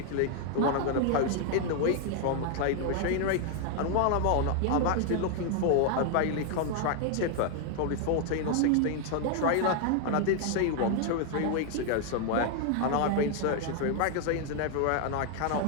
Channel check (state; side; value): different; both; correlation 0.00